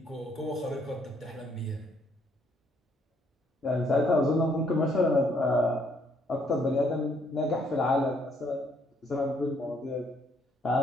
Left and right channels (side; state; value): both; normal; correlation 0.68